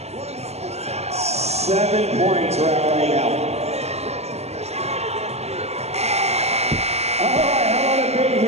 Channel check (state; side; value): late; left; 0.31 ms